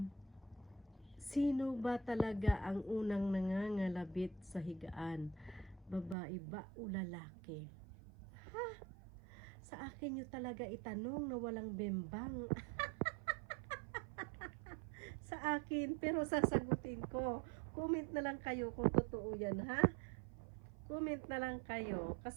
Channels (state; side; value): drops out; left; at 6.2 s